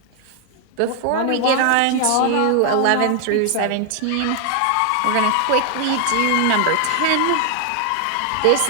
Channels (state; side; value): different; both; correlation 0.00